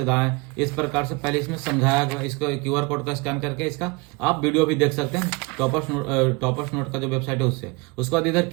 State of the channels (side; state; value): left; quieter; 26.8 dB